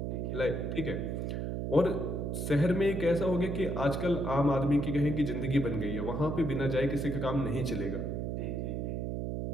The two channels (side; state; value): right; noise; hum, 2 dB below the sound